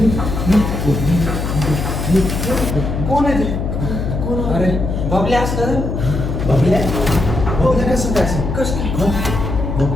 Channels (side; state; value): left; noise; hum, 3 dB below the sound